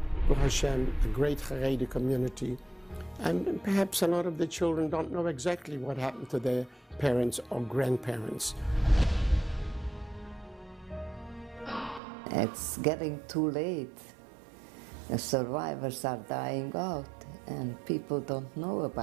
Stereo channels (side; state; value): left; drops out; at 12.0 s